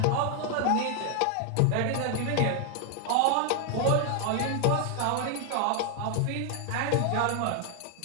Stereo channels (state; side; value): different; both; correlation 0.00